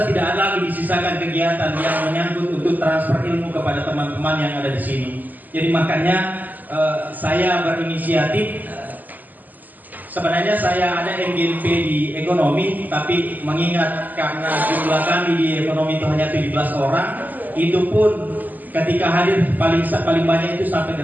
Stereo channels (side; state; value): left; late; 0.083 ms